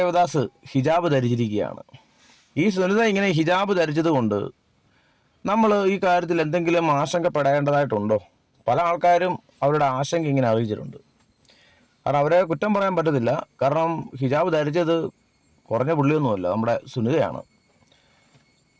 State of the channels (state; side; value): identical; both; correlation 1.00